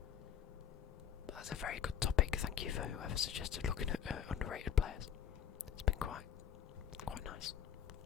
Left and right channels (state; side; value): quieter; right; 9.0 dB